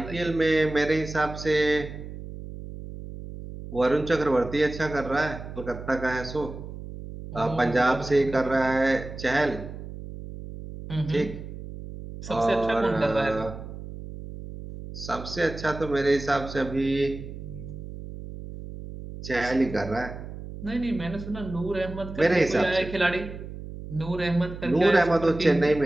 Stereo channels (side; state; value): right; noise; hum, 11 dB below the sound